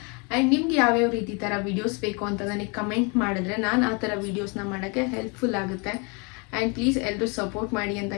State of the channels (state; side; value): quieter; right; 32.2 dB